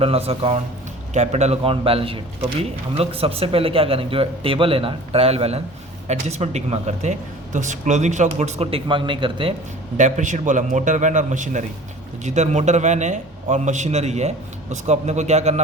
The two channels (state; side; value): normal; both; correlation 0.44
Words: and loss account, capital account, balance sheet. तो भी हम लोग सबसे पहले क्या करेंगे, जो टेबल है ना, trial balance, adjustment tick mark करते हैं। तो क्लोजिंग स्टॉक गुड्स को टिक मार्क नहीं करते। डेप्रिशिएट बोला मोटर वैन और मशीनरी, तो जिधर मोटर वैन है और मशीनरी है उसको अपने को क्या